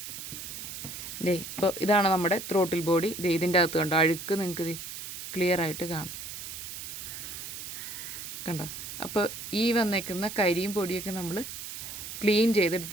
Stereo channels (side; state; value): right; noise; hiss, 9 dB below the sound